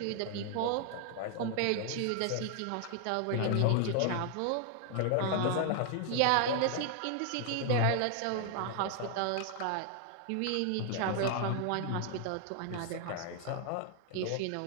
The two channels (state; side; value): different; both; correlation 0.00